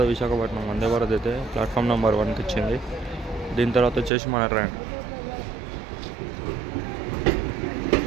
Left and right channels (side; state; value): left; drops out; at 4.1 s